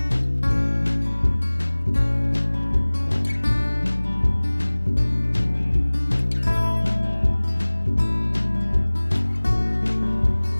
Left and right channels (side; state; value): both; inverted; correlation -1.00